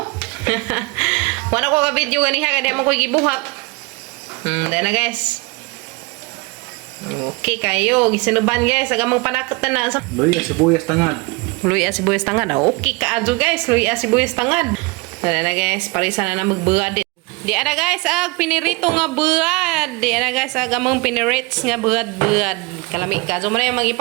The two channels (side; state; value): left; quieter; 26.7 dB